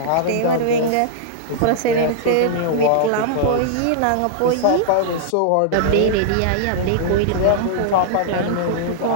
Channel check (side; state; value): both; different; correlation -0.01